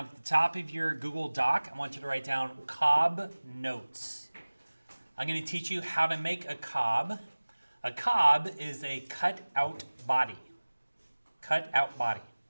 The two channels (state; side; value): inverted; both; correlation -1.00